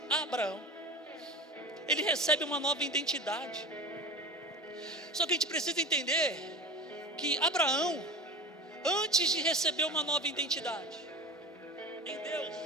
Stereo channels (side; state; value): both; normal; correlation 0.31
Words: Abraão. Ele recebe uma nova identidade. Só que a gente precisa entender que Abraão, antes de receber uma nova identidade em Deus,